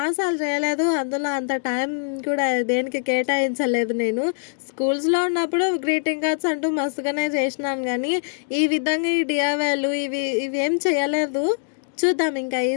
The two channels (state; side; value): silent; right; digital silence